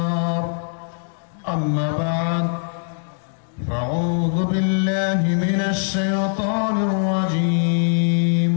أما بعد فأعوذ بالله من الشيطان الرجيم.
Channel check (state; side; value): silent; right; digital silence